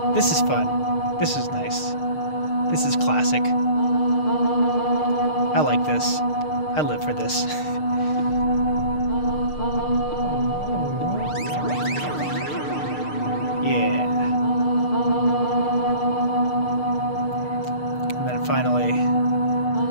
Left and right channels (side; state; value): right; late; 6.6 ms